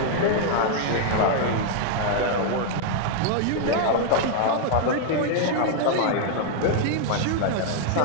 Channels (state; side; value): different; both; correlation -0.01